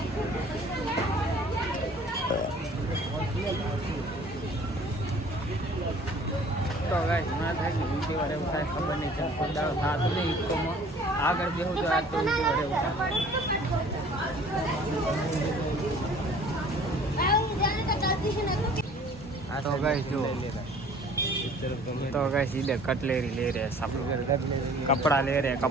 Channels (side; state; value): both; normal; correlation 0.51